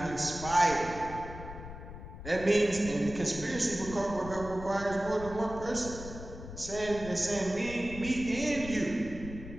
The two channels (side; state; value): left; noise; rumble, 11 dB below the sound